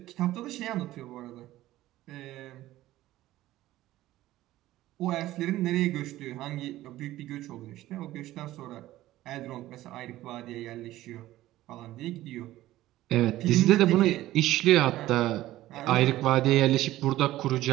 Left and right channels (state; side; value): quieter; left; 15.5 dB